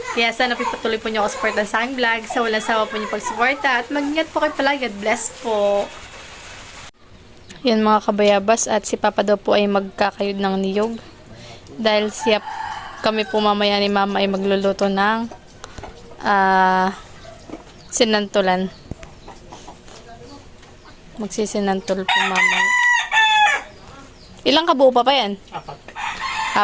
Kaya sana pipatuloy po niyo ako supportan sa aking vlog. Sa walang sawa po niyo pagsuporta at mag-ingat po kayo palagi. God bless po. Yan mga kabayabas, at si papa daw po ay magkakayod ng niyog. Dahil siya kami po mamaya ni mama ay magluluto ng sinantulan. Magsisinantol po mama. Ilang kabuo pa yan?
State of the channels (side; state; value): both; identical; correlation 1.00